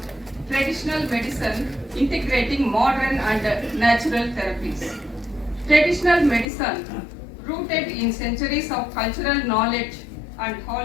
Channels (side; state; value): right; drops out; at 6.5 s